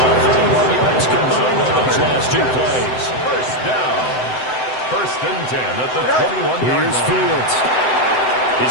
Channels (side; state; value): right; late; 7.8 ms